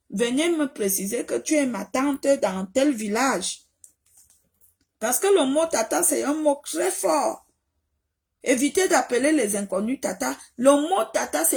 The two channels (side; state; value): both; identical; correlation 1.00